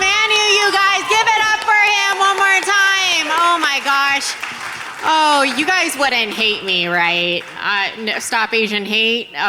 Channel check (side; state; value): both; identical; correlation 1.00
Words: you guys, give it up for him one more time. Oh my gosh. Oh, you guys wouldn't hate me, right? No, stop Asian hate.